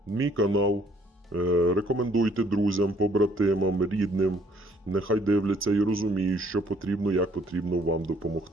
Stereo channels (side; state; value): both; normal; correlation 0.63